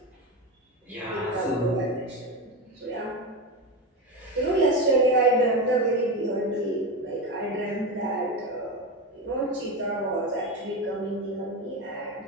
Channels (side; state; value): both; normal; correlation 0.18